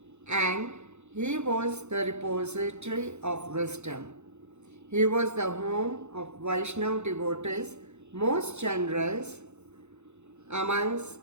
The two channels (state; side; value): late; left; 0.82 ms